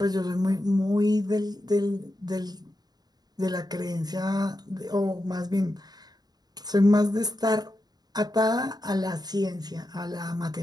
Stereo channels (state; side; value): late; left; 0.19 ms